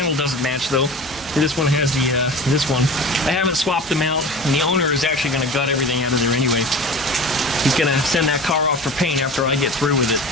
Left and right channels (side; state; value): both; normal; correlation 0.35